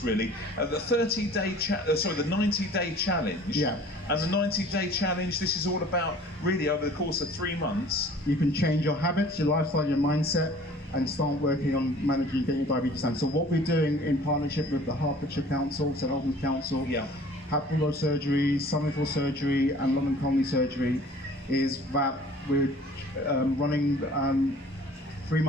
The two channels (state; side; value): normal; both; correlation 0.49